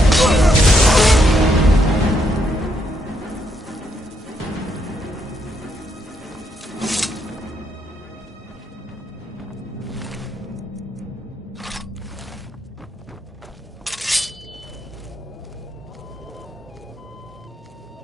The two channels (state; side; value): normal; both; correlation 0.75